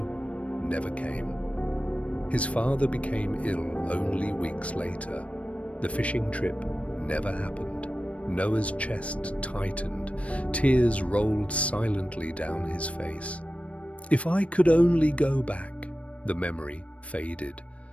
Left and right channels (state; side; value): late; right; 0.064 ms